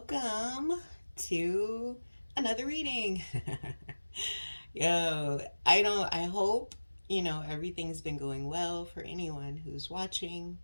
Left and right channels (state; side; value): inverted; both; correlation -1.00